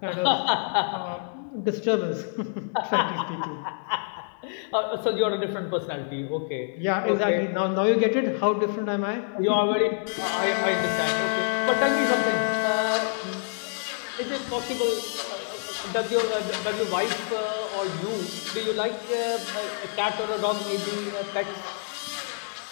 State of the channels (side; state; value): right; silent; digital silence